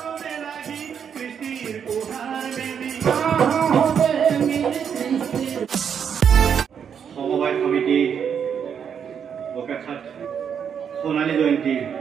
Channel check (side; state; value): left; quieter; 7.6 dB